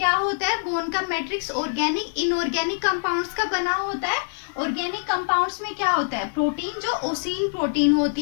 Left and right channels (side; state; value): right; silent; digital silence